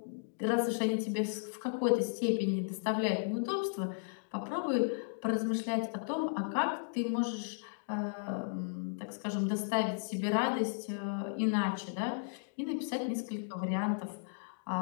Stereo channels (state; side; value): silent; right; digital silence